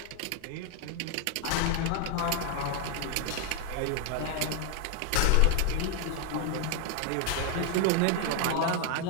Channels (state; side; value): different; both; correlation 0.01